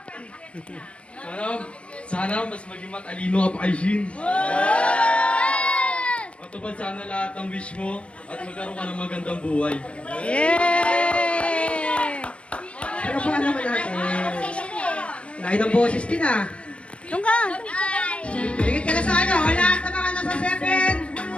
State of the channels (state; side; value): late; right; 0.060 ms